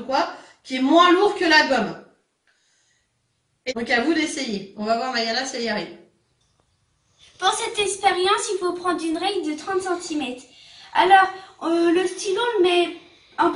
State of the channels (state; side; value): identical; both; correlation 1.00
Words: quoi qui est moins lourd que la gomme. Et donc à vous d'essayer. On va voir Mayana si elle y arrive. Pour cette expérience, il faut prendre une règle de 30 cm. Alors, le stylo, on le met à